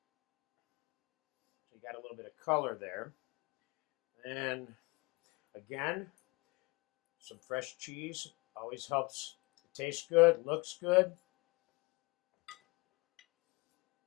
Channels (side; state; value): right; quieter; 26.7 dB